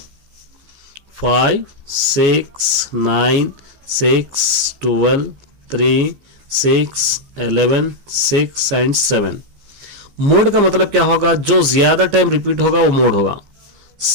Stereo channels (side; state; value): left; late; 15 ms